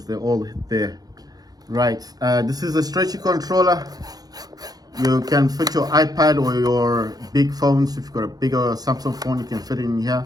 they're all there. Right, this is a stretchy controller. You can fit your iPad or your big phones. If you've got a bigger Samsung phone, you can fit it in here.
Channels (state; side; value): late; left; 0.19 ms